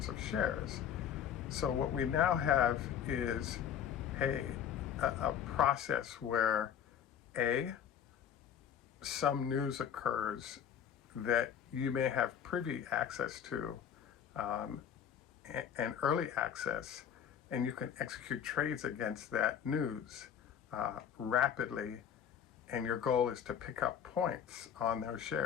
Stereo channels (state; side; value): quieter; right; 8.6 dB